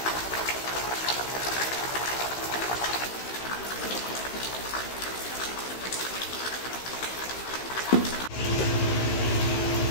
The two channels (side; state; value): right; late; 16 ms